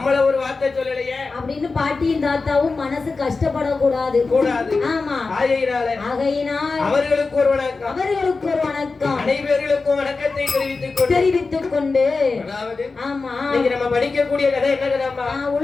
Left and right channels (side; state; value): right; quieter; 4.1 dB